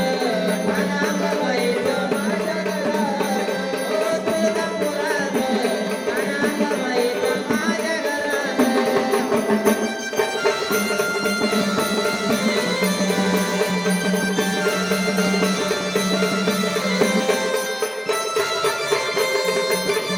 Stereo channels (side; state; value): both; identical; correlation 1.00